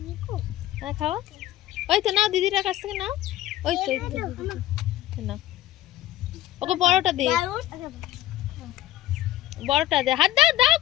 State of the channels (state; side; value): quieter; right; 14.2 dB